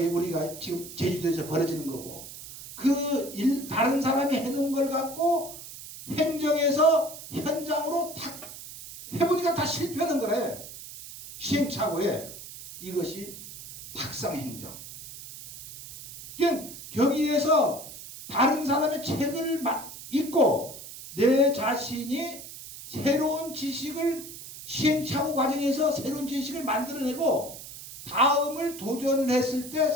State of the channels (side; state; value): right; noise; hiss, 13 dB below the sound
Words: 지금 제주도에서 벌어지는 거고 다른 사람이 해놓은 걸 갖고 행정에서 현장으로 탁 해보니까 다 실패하는 거래. 시행착오에 이것이 탁상행정. 거기에서 다른 사람의 책을 읽고 내 자신이 새로운 지식을 시행착오 과정에서 새로운 지식을 만들어내고 다음을 도전했을 때